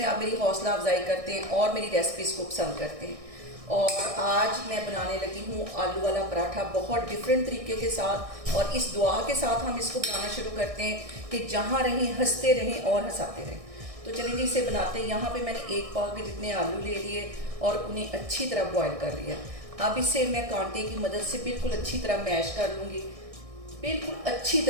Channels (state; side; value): late; left; 1.6 ms